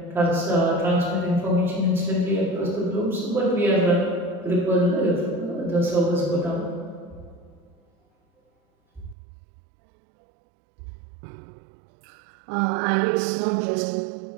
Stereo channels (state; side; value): drops out; left; at 9.2 s